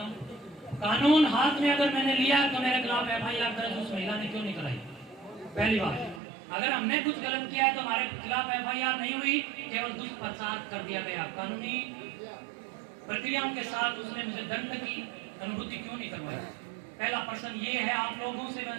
हूँ। कानून हाथ में अगर मैंने लिया तो मेरे खिलाफ FIR दर्ज उस महिला ने क्यों नहीं कराई? पहली बात, अगर हमने कुछ गलत किया है तो हमारे खिलाफ FIR नहीं हुई, केवल दुष्प्रचार कर दिया गया। कानूनी प्रक्रियाओं के साथ उसने मुझे दंड की अनुभूति क्यों नहीं करवाई? पहला प्रश्न ये है, आप लोगों से मैं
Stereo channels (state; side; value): drops out; left; at 6.2 s